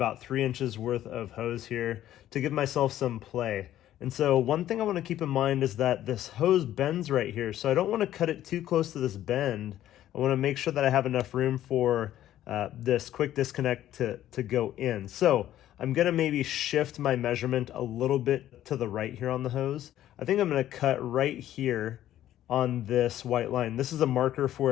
3 inches worth of hose here to give myself some play. And so one thing I wanna keep in mind is that this hose bends right here, so I don't wanna cut it too close to this bend. I wanna make sure that I have enough room for this quick disconnect to go in. So I'm gonna maybe shift my measurement a little bit to the right here on the hose. I think I'm gonna cut right here on this white line. This is a marker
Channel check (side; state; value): right; quieter; 12.6 dB